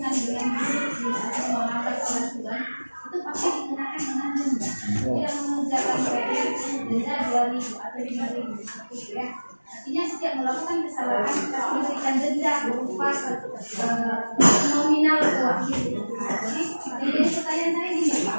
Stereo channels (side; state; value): both; inverted; correlation -1.00